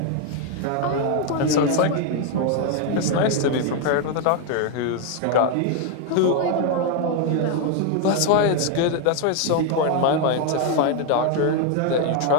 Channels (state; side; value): different; both; correlation 0.01